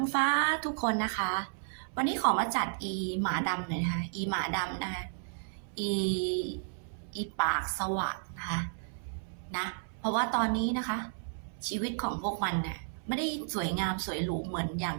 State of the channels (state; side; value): silent; left; 56 dB below the other